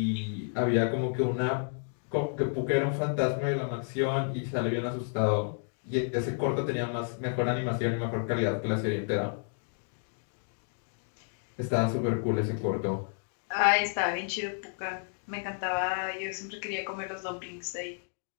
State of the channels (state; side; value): silent; right; digital silence